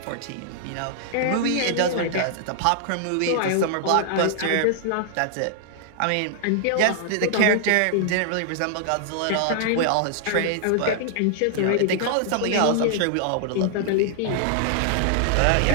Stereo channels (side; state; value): both; different; correlation -0.01